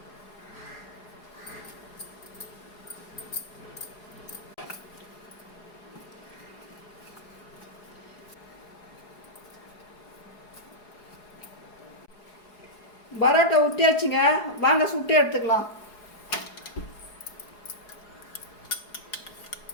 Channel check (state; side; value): late; right; 4.8 ms